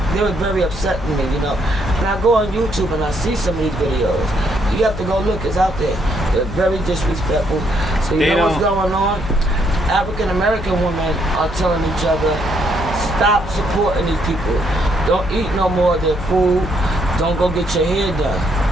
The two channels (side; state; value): left; noise; hum, 10 dB below the sound